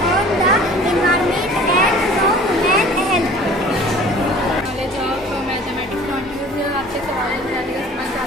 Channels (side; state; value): both; normal; correlation 0.47